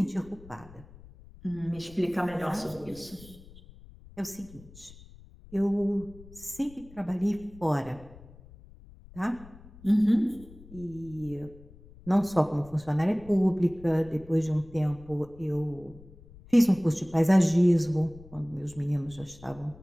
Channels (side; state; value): left; noise; rumble, 21 dB below the sound